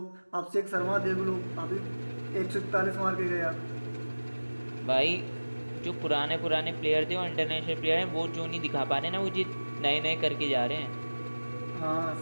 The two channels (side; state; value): both; inverted; correlation -1.00